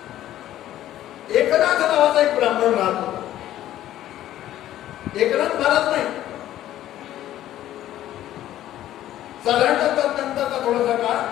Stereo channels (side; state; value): right; quieter; 13.0 dB